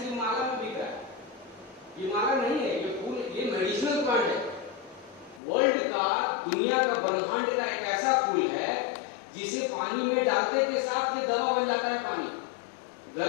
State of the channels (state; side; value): drops out; right; at 5.4 s